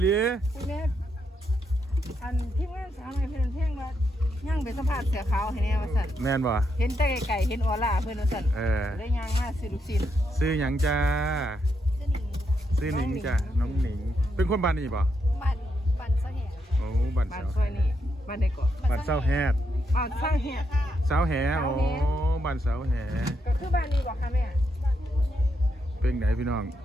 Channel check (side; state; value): both; normal; correlation 0.80